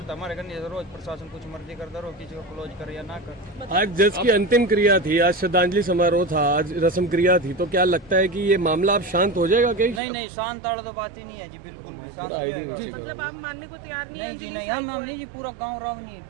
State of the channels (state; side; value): drops out; left; at 10.0 s